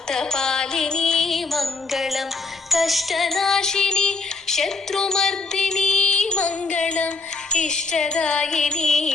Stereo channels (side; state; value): right; quieter; 3.8 dB